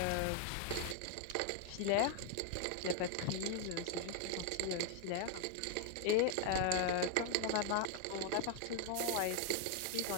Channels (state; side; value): different; both; correlation 0.00